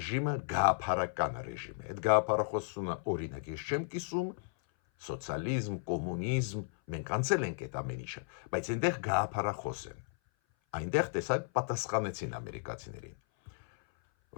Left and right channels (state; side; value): silent; right; 55 dB below the other